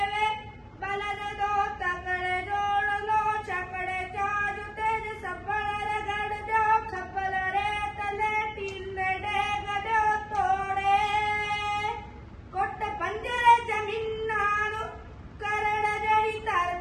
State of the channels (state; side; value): identical; both; correlation 1.00